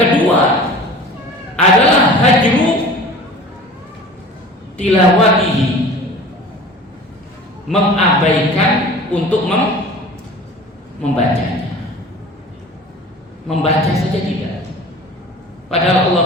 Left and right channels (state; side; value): normal; both; correlation 0.41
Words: kedua adalah hajru tilawatihi, mengabaikan untuk membacanya. Membaca saja tidak. Padahal Allah